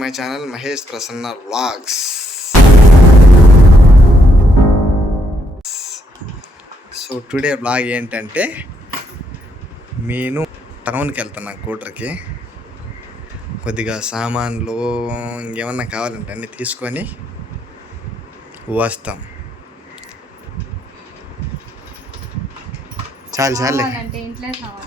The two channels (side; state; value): both; normal; correlation 0.75